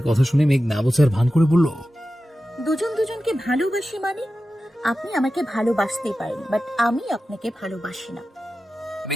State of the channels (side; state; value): both; normal; correlation 0.93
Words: কথা শুনে মেঘ না বোঝার ভান করে বলল, দুজন দুজনকে ভালোবাসি মানে? আপনি আমাকে ভালোবাসতেই পারেন, বাট আমি আপনাকে ভালোবাসি না।